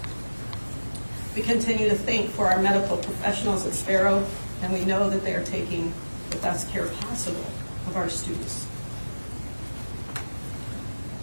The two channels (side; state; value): both; inverted; correlation -1.00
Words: We continue to thank for our medical professionals at Sparrow, and we know that they are taking the best care possible of our students.